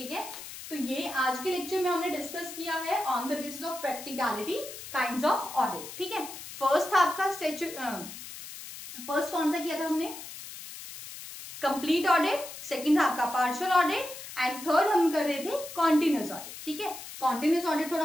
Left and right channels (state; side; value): noise; left; hiss, 12 dB below the sound